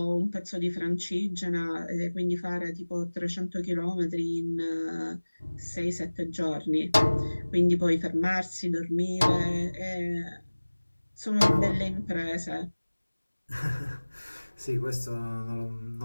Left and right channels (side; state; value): both; inverted; correlation -1.00